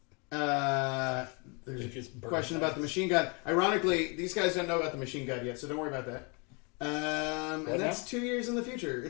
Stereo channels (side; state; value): right; quieter; 32.5 dB